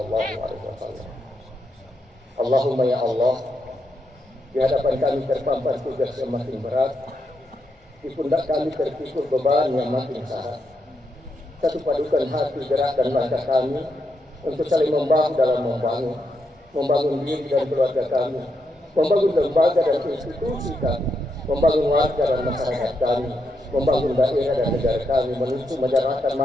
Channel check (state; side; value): normal; both; correlation 0.82